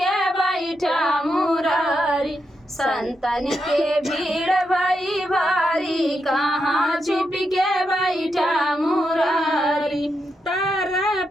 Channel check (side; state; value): both; normal; correlation 0.84